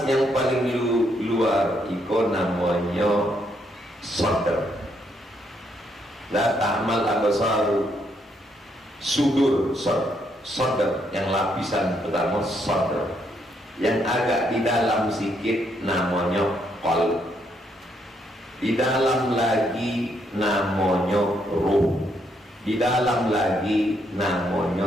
yang paling luar itu namanya sadar. La ta'mal absaru, sudur, sadar, yang lapisan pertama sadar, yang agak di dalam sikit namanya qalb, di dalam lagi namanya ruh, di dalam lagi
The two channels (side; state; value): both; normal; correlation 0.74